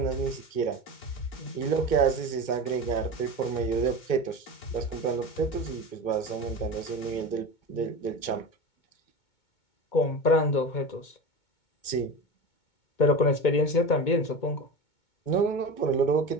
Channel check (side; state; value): right; late; 2.2 ms